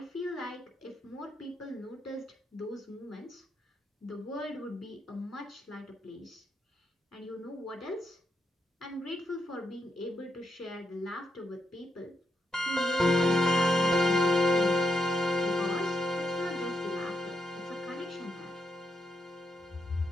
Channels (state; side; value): normal; both; correlation 0.81